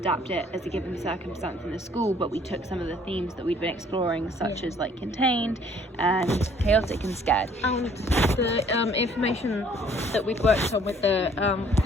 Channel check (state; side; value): normal; both; correlation 0.59